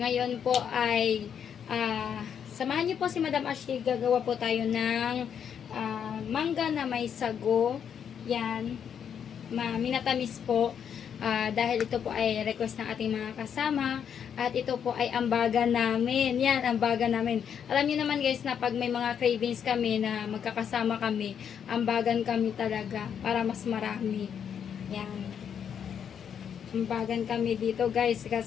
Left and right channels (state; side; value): quieter; right; 8.1 dB